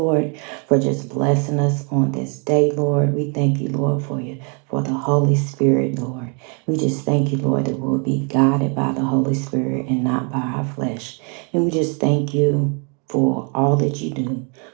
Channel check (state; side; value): quieter; left; 36.5 dB